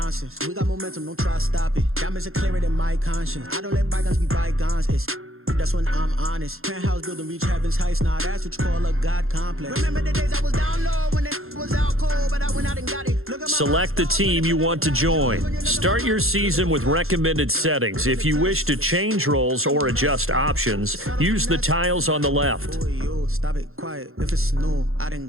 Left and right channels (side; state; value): left; late; 0.61 ms